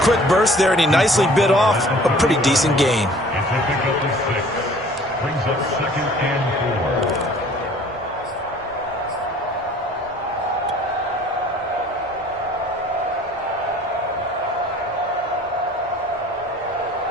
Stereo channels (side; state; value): both; normal; correlation 0.51